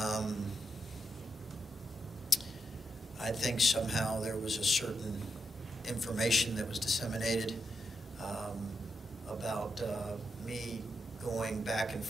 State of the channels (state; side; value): normal; both; correlation 0.84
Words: I think somehow there was a certain information that was disseminated about me going back and